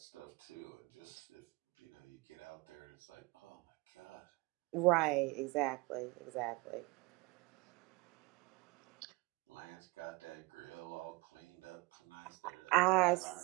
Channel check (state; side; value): quieter; left; 25.5 dB